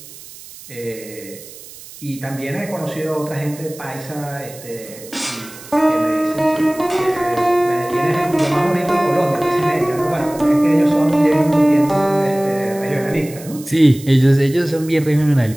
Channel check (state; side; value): noise; right; hiss, 17 dB below the sound